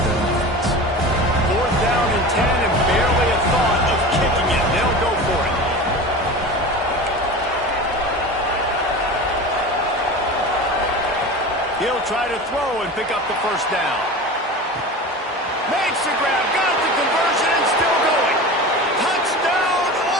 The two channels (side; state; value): both; normal; correlation 0.32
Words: their offense. Fourth down and 10 and barely a thought of kicking it. They'll go for it. He'll try to throw and pick up the first down. Makes the grab, got the conversion, and still going. Touchdown,